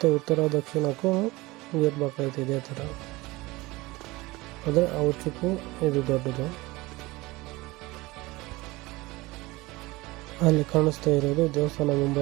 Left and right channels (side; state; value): left; quieter; 21.3 dB